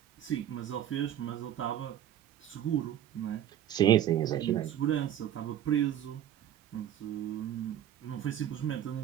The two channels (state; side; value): quieter; left; 10.9 dB